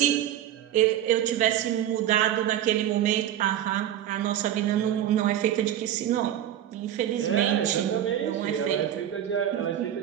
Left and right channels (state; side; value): quieter; left; 11.3 dB